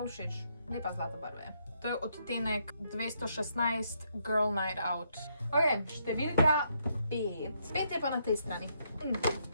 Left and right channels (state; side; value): inverted; both; correlation -0.75